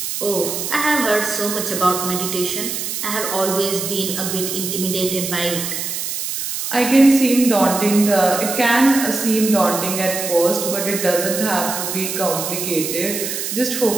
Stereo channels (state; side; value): noise; right; hiss, 4 dB below the sound